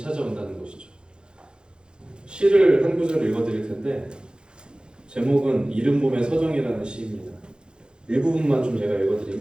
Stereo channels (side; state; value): left; late; 0.049 ms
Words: 것이죠. 시를 한 구절 읽어드릴 텐데 제목은 이른 봄의 서정이라는 시입니다. 일부분만 좀 제가